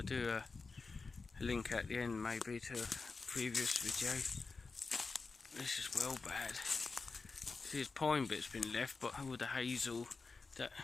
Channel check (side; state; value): right; quieter; 4.2 dB